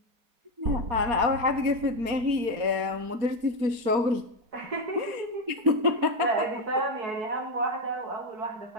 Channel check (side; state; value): left; late; 4.2 ms